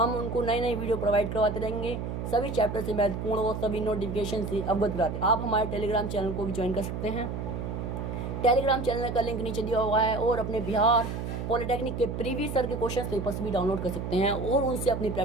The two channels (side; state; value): right; noise; hum, 5 dB below the sound